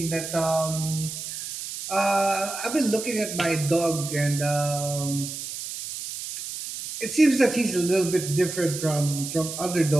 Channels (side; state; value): right; noise; hiss, 8 dB below the sound